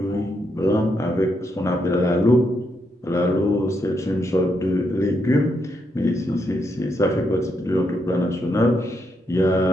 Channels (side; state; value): both; normal; correlation 0.80